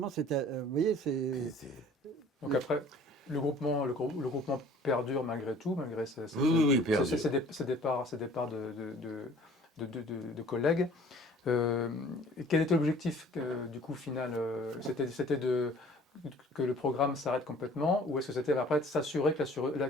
c'était, vous voyez, c'est. Donc après, le groupement perdure malgré tout, malgré ces départs de collègues. Quel était l'objectif du coup final? C'était que le programme s'arrête complètement, ou est-ce que c'était après de s'assurer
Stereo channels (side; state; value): both; normal; correlation 0.51